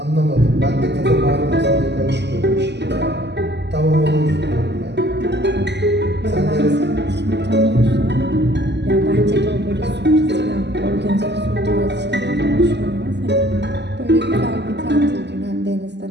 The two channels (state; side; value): late; left; 0.50 ms